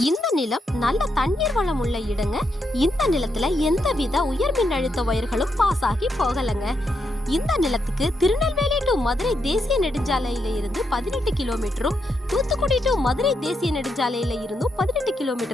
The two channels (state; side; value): normal; both; correlation 0.81